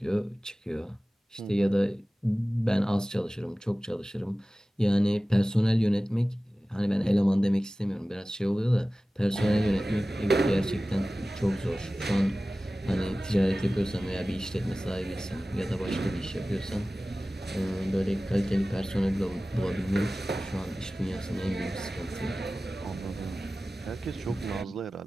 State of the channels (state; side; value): normal; both; correlation 0.97